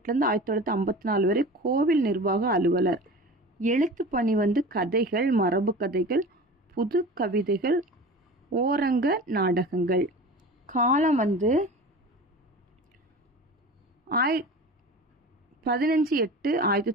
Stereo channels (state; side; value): normal; both; correlation 0.35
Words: 1954 வரை கோவில் நிர்வாக அலுவலர். எழுத்து பணி கதைகள், மரபு கதைகள், புது கவிதைகள், ஓரங்க நாடகங்கள். காலம்